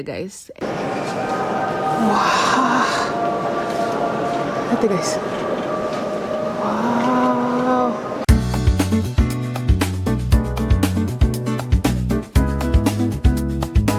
guys. Wah. Lihat ya guys. Wow.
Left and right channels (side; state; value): both; identical; correlation 1.00